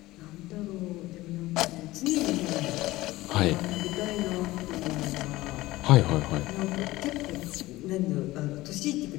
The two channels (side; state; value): right; quieter; 18.2 dB